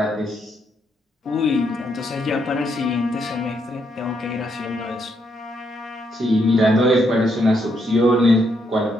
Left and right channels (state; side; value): normal; both; correlation 0.76